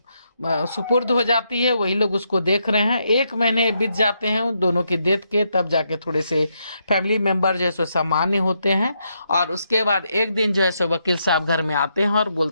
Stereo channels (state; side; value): inverted; both; correlation -0.79